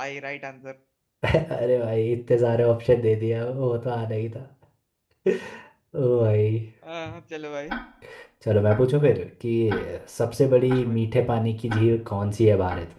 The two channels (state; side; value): identical; both; correlation 1.00